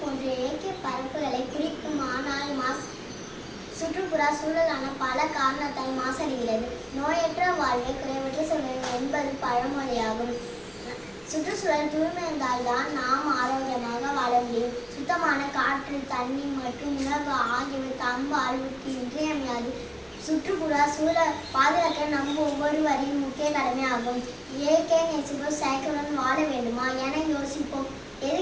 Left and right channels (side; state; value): both; identical; correlation 1.00